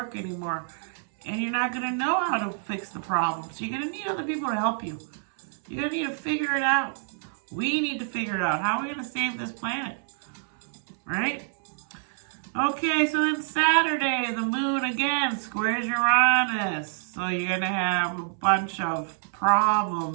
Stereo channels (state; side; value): silent; left; 60 dB below the other